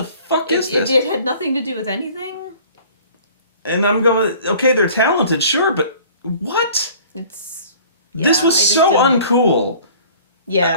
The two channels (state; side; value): inverted; both; correlation -0.49